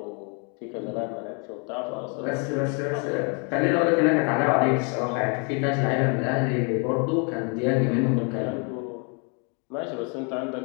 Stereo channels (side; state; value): right; quieter; 35.9 dB